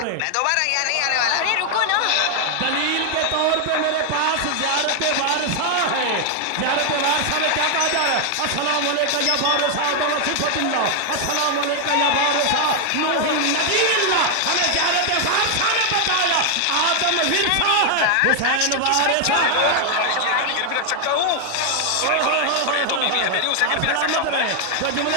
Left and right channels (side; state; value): both; different; correlation 0.00